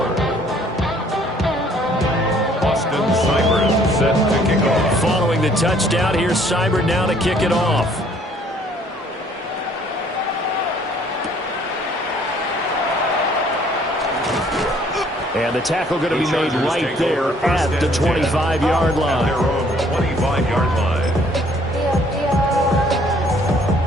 Austin Seibert set to kick off. Following the touchdown, here's Seibert now to kick it off. And the tackle going to be made right there at the 25-yard line. At their own 25-yard line.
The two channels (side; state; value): both; normal; correlation 0.60